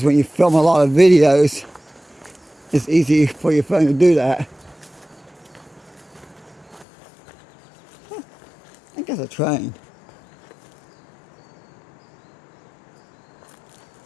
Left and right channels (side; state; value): right; drops out; at 6.9 s